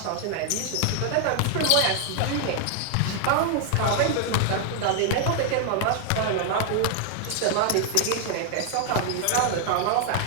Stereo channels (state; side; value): different; both; correlation 0.00